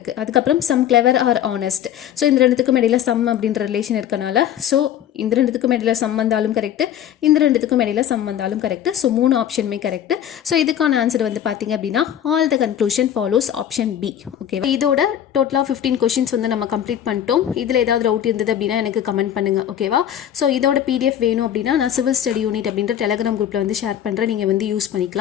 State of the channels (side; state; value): right; quieter; 10.2 dB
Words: அதுக்கப்புறம் some clever are honest. So இந்த ரெண்டுத்துக்கும் இடையில சம் அப்படின்ற ரிலேஷன் இருக்கனால ஸோ இந்த ரெண்டுத்துக்கும் இடையில சம் வந்தாலும் கரெக்டு, இந்த ரெண்டுத்துக்கும் இடையில சம் வந்தாலும் கரெக்ட். ஸோ 3 ஆப்ஷனுமே கரெக்ட். ஸோ இதுக்கான ஆன்சர் வந்து பார்த்தீங்க அப்படின்னா all the conclusion follows option B. ஓகேவா? இதோட டோட்டலாக 15 கொஷின்ஸ் வந்து நம்ம கம்ப்ளீட் பண்ணிட்டோம். இதில் ஏதாவது டவுட் இருந்தது அப்படின்னா எனக்கு கமெண்ட் பண்ணுங்கள். ஓகேவா? ஸோ இதோட PDF வேணும் அப்படின்னா நான் சிவில் ஸ்டடி யூனிட் அப்படின்ற டெலிகிராம் குரூப்பில் வந்து ஷேர் பண்ணுறேன். நீங்கள் வந்து யூஸ்